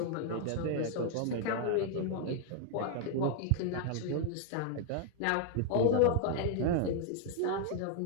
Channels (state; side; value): different; both; correlation 0.00